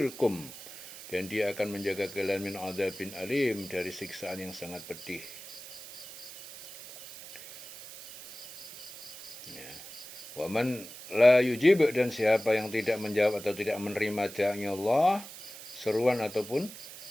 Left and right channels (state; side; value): noise; right; hiss, 14 dB below the sound